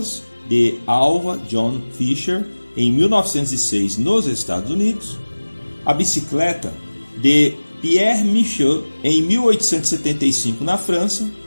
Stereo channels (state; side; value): inverted; both; correlation -1.00